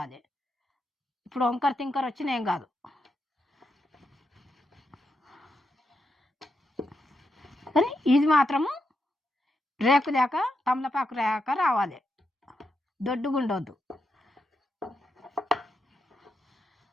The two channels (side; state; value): both; normal; correlation 0.84